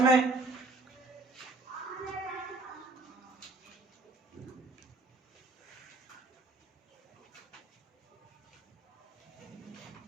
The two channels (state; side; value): quieter; left; 3.3 dB